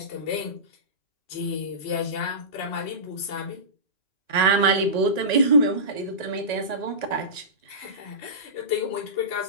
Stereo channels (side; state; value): right; late; 1.9 ms